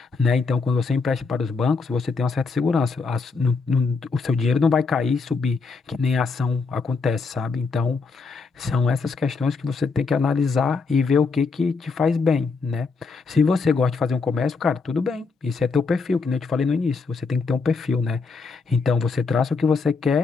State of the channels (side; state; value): right; quieter; 4.5 dB